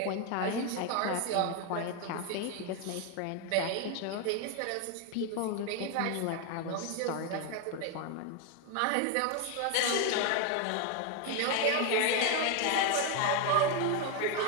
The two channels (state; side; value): different; both; correlation 0.01